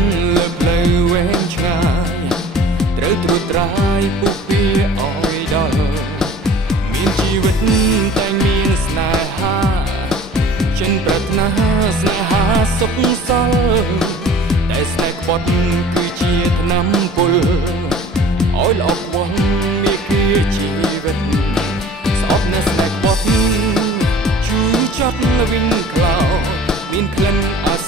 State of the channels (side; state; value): both; normal; correlation 0.46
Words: លើផ្លូវវែងឆ្ងាយត្រូវត្រួតត្រាយពុះពៀឲ្យដល់មានជីវិតតែមានស្នេហាចិនប្រាថ្នាស្នេហាសុខសល់តែស្នេហ៍ក្បត់គឺជាថ្នាំពុលឲ្យល្អខ្វល់មានគៀជីវិតស្អប់នៅស្នេហ៍ក្បត់ជូរចត់វិញក្លោមានក្លិនអា